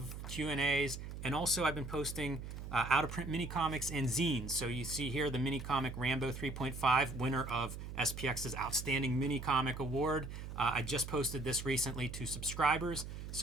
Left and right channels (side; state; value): right; noise; hum, 8 dB below the sound